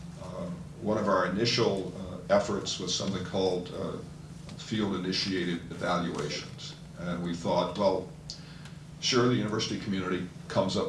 One of our initial efforts was something called field-initiated evaluations. And we thought, well, sure, the university community comes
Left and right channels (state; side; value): identical; both; correlation 1.00